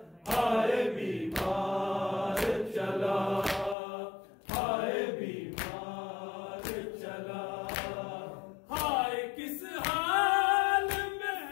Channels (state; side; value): drops out; right; at 3.8 s